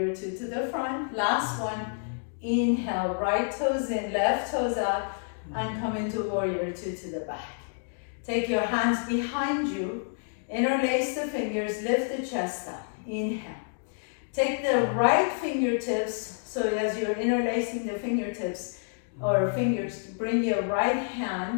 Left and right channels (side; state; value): right; silent; digital silence